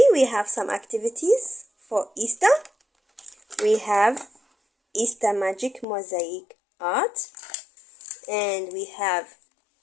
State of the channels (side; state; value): right; drops out; at 5.9 s